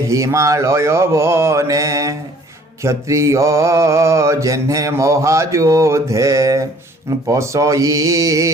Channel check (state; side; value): normal; both; correlation 0.55